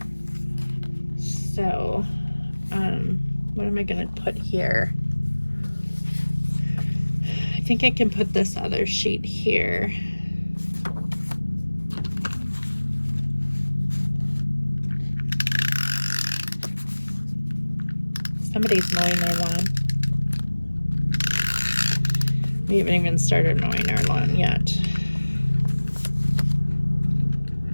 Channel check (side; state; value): both; inverted; correlation -1.00